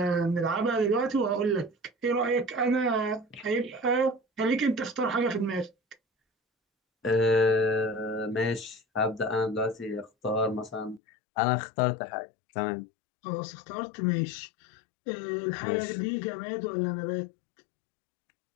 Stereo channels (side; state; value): right; drops out; at 11.0 s